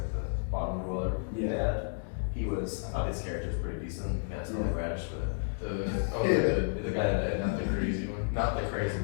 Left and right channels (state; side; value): silent; right; 57 dB below the other